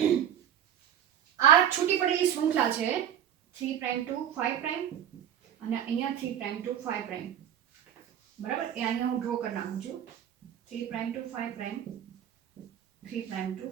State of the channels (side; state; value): left; quieter; 10.0 dB